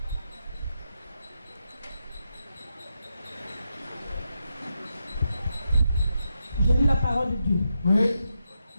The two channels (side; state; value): both; inverted; correlation -0.85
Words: Je lis la parole de Dieu. Oui.